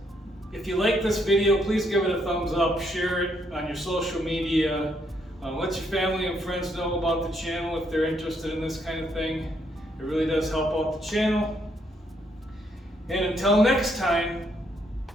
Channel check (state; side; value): normal; both; correlation 0.73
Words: if you like this video, please give it a thumbs up, share it on your social media. Let your family and friends know about the channel if they're interested in this kind of thing. It really does help out the channel. And until next time,